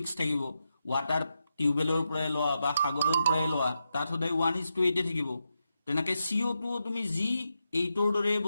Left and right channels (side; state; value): both; inverted; correlation -0.86